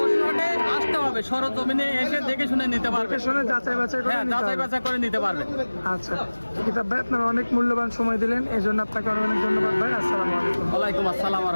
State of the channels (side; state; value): both; inverted; correlation -1.00